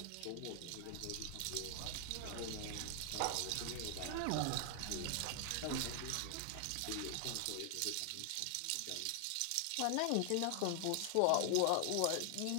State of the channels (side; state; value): both; different; correlation 0.00